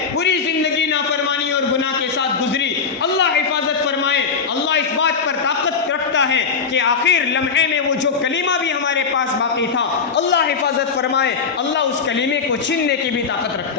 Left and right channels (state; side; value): quieter; right; 5.5 dB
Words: پوری زندگی نافرمانی اور گناہ کے ساتھ گزری، اللہ حفاظت فرمائے۔ اللہ اس بات پر طاقت رکھتا ہے کہ آخر لمحے میں وہ جو کلمہ بھی ہمارے پاس باقی تھا اللہ حفاظت فرمائے، اللہ اس کلمے کو چھیننے کی بھی طاقت